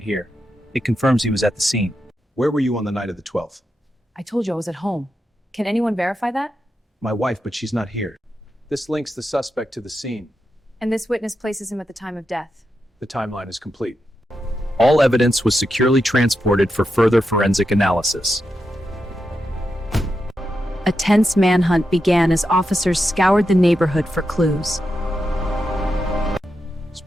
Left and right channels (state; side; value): normal; both; correlation 0.87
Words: here. It confirms he was at the scene. Where were you on the night of the 12th? I told you I was at home. Can anyone verify that? My wife, but she's not here. This links the suspect to the scene. And this witness places him at the time of death. The timeline is complete. All evidence was securely transported for further forensic analysis. A tense manhunt began as officers scoured the neighborhood for clues.